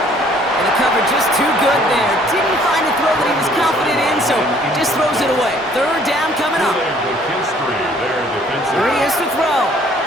And the cover just too good there. Didn't find the throw that he was confident in, so just throws it away. 3rd down coming up. Here he is to throw.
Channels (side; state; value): both; normal; correlation 0.59